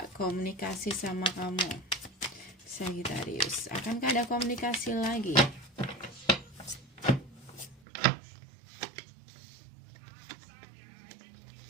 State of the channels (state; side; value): drops out; left; at 7.8 s